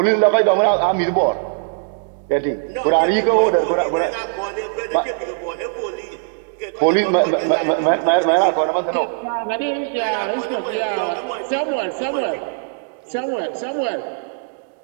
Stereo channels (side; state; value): left; silent; 66 dB below the other